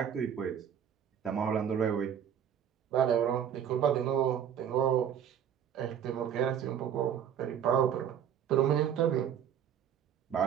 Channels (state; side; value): quieter; left; 8.9 dB